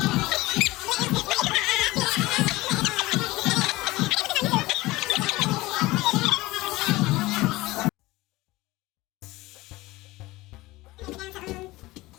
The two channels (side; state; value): right; quieter; 19.7 dB